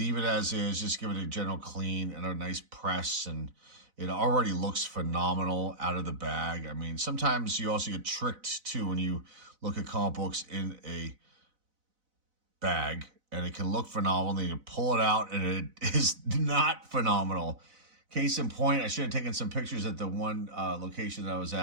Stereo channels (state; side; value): late; left; 4.0 ms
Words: it as is, just give it a general clean and a nice press, and it already looks phenomenal out of the bag. I mean, sometimes you also get tricked too when you look at comic books in a bag, and it can look phenomenal, and then you pull it out and it is not phenomenal. Case in point, I should have taken some pictures at the one location that I was